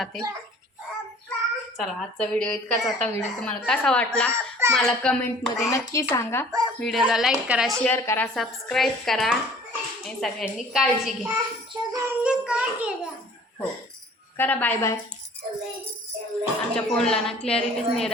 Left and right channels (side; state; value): both; normal; correlation 0.50